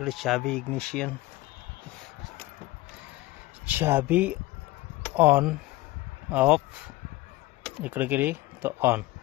चाबी इग्निशन, चाबी ऑन ऑफ इकडे गेली तर ऑन,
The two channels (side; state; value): right; quieter; 19.0 dB